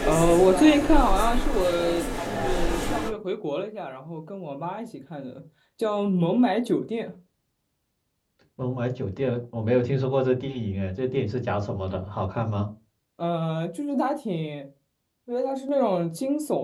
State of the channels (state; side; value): identical; both; correlation 1.00